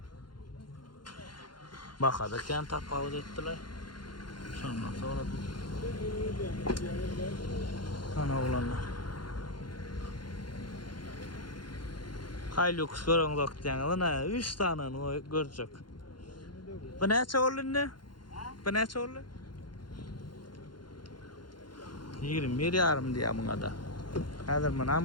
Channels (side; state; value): right; late; 0.71 ms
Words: Bakadırken tapavuz ettiler. Sonra ana olanlar. Hilux görüngüz diýenler 3 tane görecek. Bu näçe oldu ne? Bu näçe oldu? 21 yarım diye buna da. Hazır